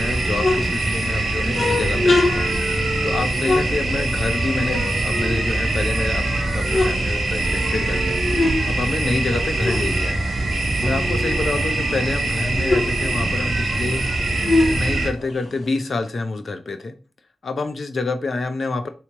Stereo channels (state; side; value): normal; both; correlation 0.89